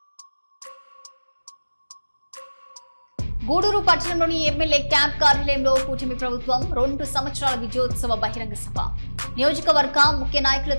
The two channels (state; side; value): inverted; both; correlation -1.00